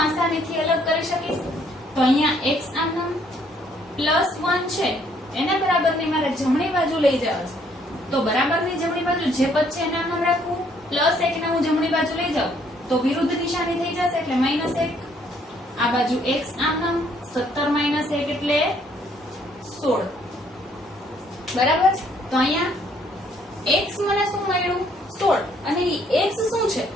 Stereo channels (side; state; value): both; normal; correlation 0.66